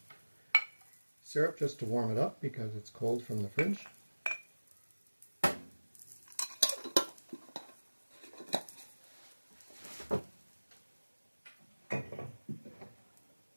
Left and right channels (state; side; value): inverted; both; correlation -1.00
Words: syrup just to warm it up because it's cold from the fridge.